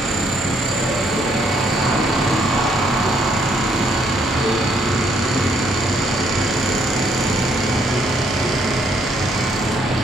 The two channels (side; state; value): both; normal; correlation 0.69